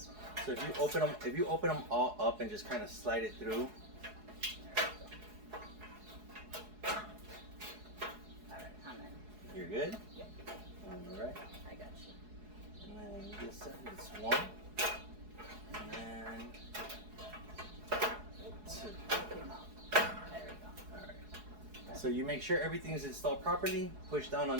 So if you open them all up and just kind of slide it through. Alright, I'm in. You're good? Yep. All right. I got you. And then this side is 1. And then 2. Came out. There we go. All right. So you make sure everything is installed properly. Push down on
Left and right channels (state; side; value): late; left; 4.7 ms